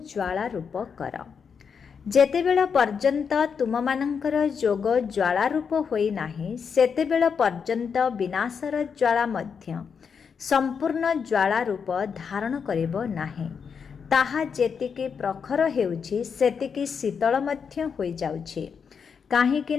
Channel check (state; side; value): quieter; right; 6.4 dB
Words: ଜ୍ୱାଳା ରୂପ କର। ଯେତେବେଳ ପର୍ଯ୍ୟନ୍ତ ତୁମମାନଙ୍କର ଯୋଗ ଜ୍ୱାଳା ରୂପ ହୋଇନାହିଁ, ସେତେବେଳ ପର୍ଯ୍ୟନ୍ତ ବିନାଶର ଜ୍ୱାଳା ମଧ୍ୟ ସମ୍ପୂର୍ଣ୍ଣ ଜ୍ୱାଳା ରୂପ ଧାରଣ କରିବ ନାହିଁ। ତାହା ଯେତିକି ପ୍ରଖର ହେଉଛି, ସେତିକି ଶୀତଳ ମଧ୍ୟ ହୋଇଯାଉଛି।